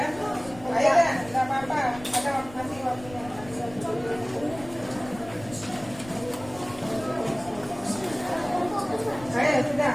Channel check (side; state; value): left; noise; rumble, 18 dB below the sound